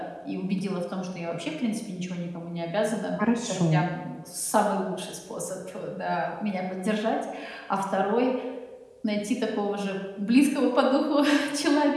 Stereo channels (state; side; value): identical; both; correlation 1.00